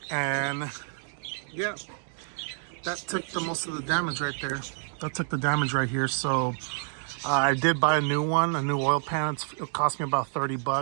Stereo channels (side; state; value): left; silent; digital silence